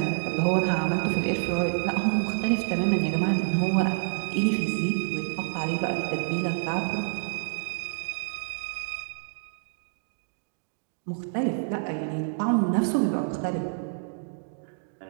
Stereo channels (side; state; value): left; silent; digital silence